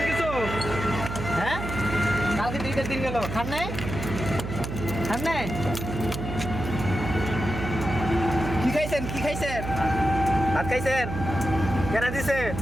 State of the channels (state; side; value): noise; right; hum, 6 dB below the sound